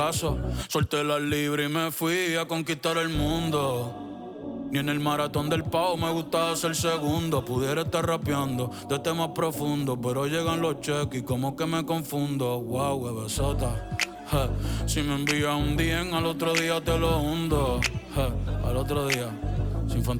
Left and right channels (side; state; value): both; identical; correlation 1.00